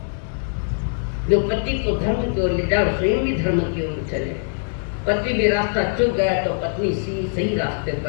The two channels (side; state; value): right; silent; digital silence